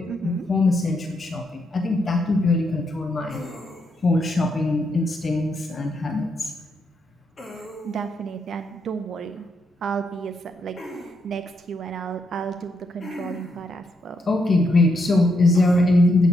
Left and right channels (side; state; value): both; normal; correlation 0.79